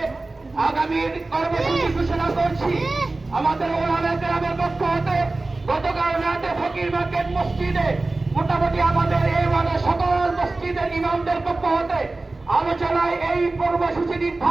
আগামী কর্মসূচি ঘোষণা করছি। আমাদের ওলামা কেরামের পক্ষ হতে গতকাল রাতে ফকির মার্কেট মসজিদে মোটামুটি আমাদের এই ওয়ার্ডের সকল মসজিদের ইমামদের পক্ষ হতে আলোচনায় এই কর্মসূচি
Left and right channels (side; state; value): left; quieter; 3.2 dB